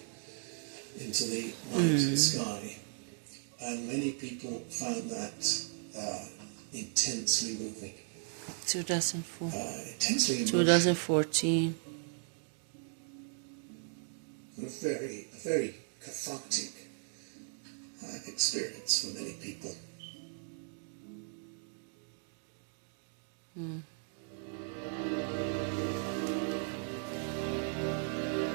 into the night sky. and many people found that intensely moving. 2004. Intensely emotional. 2014. A very cathartic experience for many people.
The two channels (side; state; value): left; silent; 53 dB below the other